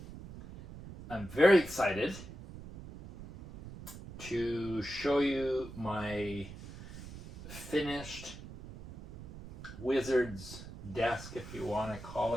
very excited to show you my finished wizard's desk, if you want to call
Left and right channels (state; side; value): noise; right; rumble, 13 dB below the sound